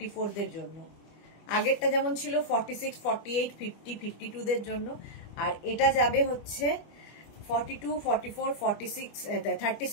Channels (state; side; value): late; right; 25 ms